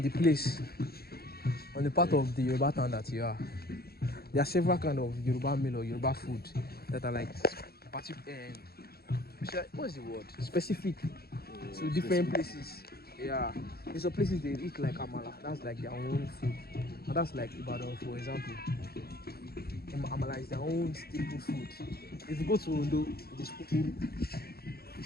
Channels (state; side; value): late; right; 0.45 ms